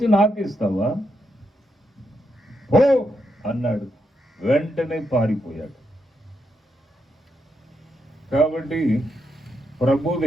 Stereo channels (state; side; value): normal; both; correlation 0.81